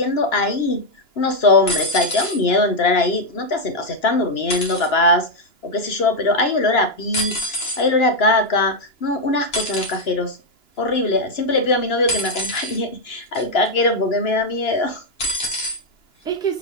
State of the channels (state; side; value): late; right; 2.9 ms